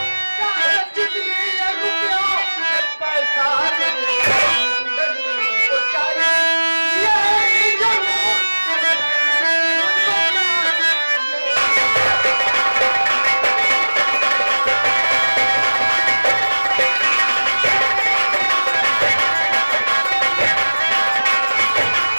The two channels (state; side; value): inverted; both; correlation -1.00